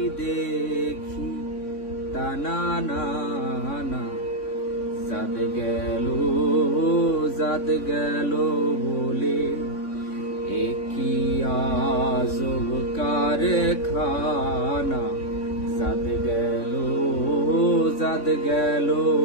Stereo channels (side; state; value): right; late; 3.6 ms